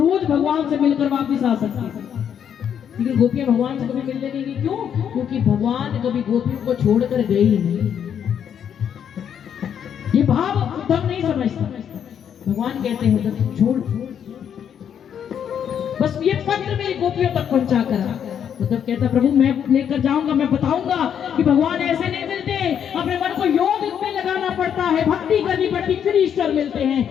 भगवान से मिलकर वापिस आ सकती, लेकिन गोपियां भगवान से कभी मिलने नहीं गई। क्यों? क्योंकि भगवान कभी गोपियों को छोड़कर गए ही नहीं। ये भाव उद्धव नहीं समझता। भगवान कहते हैं, जब तुम छोड़, बस ये पत्र मेरी गोपियों तक पहुंचा कर। उद्धव कहता, प्रभु मैं लेकर जाऊंगा, मैं बताऊंगा कि भगवान ऐसे नहीं मिलते, अपने मन को योग में लगाना पड़ता है, भक्ति करनी पड़ती, फिर ईश्वर मिलते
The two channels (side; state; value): right; quieter; 8.6 dB